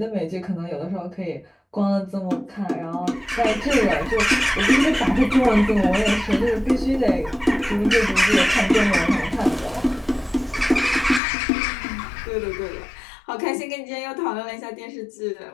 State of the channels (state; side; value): drops out; right; at 11.2 s